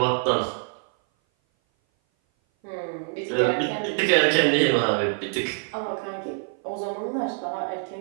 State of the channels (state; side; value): silent; left; 57 dB below the other